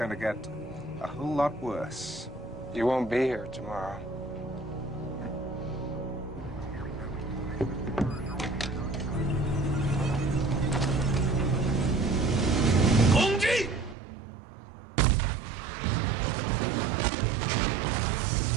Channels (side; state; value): left; drops out; at 14.0 s